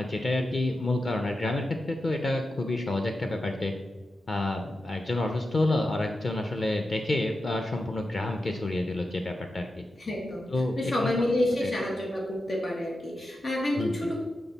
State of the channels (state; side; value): normal; both; correlation 0.90